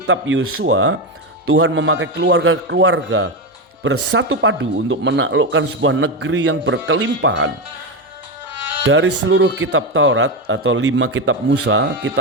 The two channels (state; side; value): normal; both; correlation 0.13